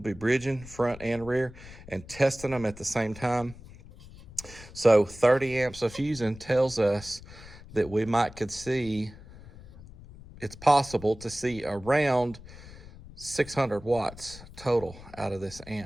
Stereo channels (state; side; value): noise; left; rumble, 18 dB below the sound